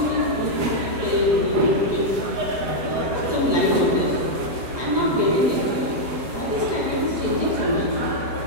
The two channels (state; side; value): late; left; 8.0 ms